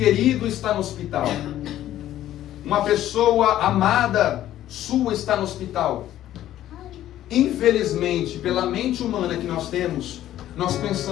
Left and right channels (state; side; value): quieter; right; 12.8 dB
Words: está no hospital, uma pessoa amada sua está no hospital. Infelizmente, pela mente humana que nós temos, nós